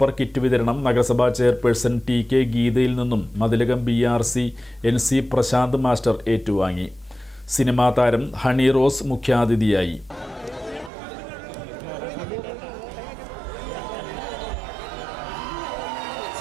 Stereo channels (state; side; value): drops out; left; at 10.9 s